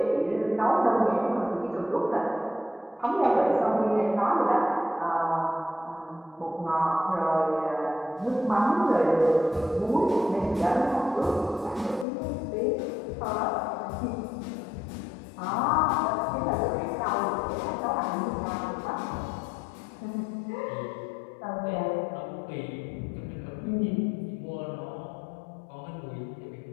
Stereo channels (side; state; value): right; drops out; at 12.1 s